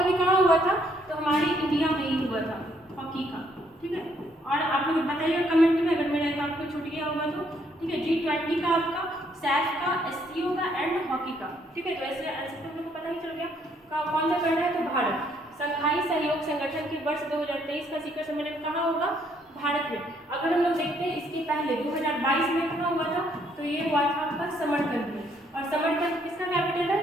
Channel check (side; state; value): both; normal; correlation 0.69